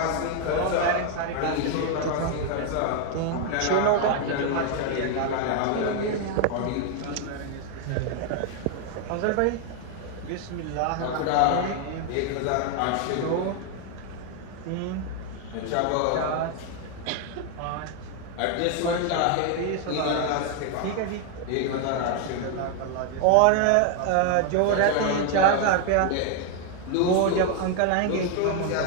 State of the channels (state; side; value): different; both; correlation 0.01